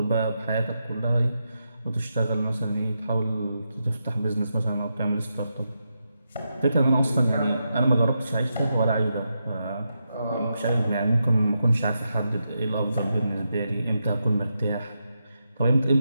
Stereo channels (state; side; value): inverted; both; correlation -0.86